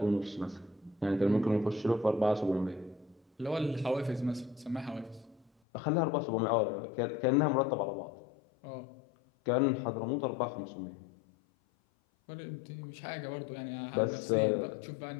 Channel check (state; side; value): drops out; right; at 5.5 s